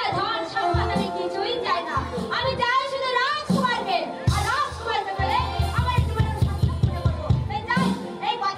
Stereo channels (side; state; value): both; identical; correlation 1.00